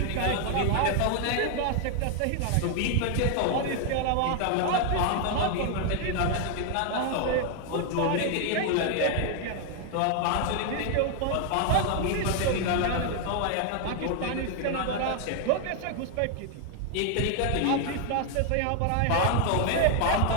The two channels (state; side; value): different; both; correlation 0.00